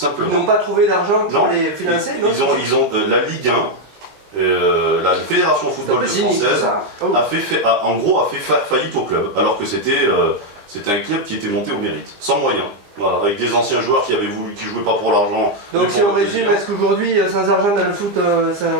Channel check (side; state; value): left; late; 20 ms